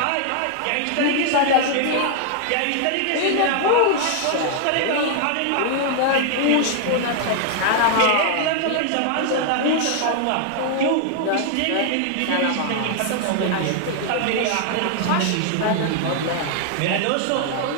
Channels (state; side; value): different; both; correlation 0.00